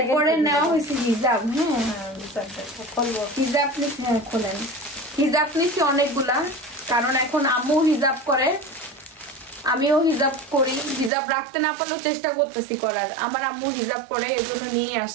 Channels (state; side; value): drops out; left; at 11.1 s